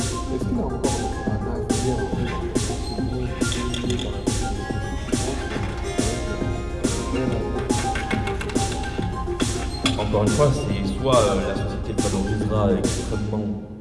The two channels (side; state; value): both; identical; correlation 1.00